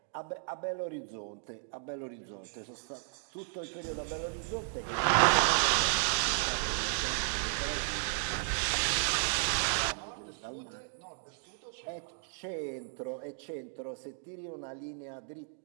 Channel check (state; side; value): silent; left; digital silence